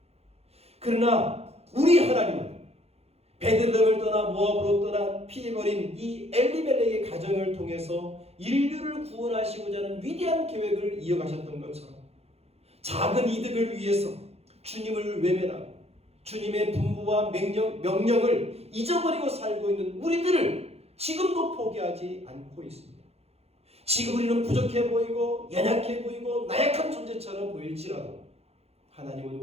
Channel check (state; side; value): late; left; 0.30 ms